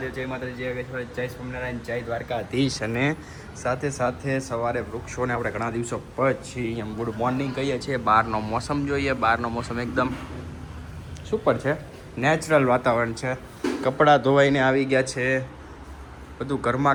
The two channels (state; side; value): identical; both; correlation 1.00